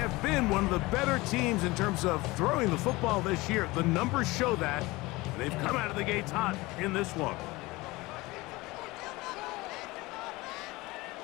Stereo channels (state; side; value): quieter; right; 21.5 dB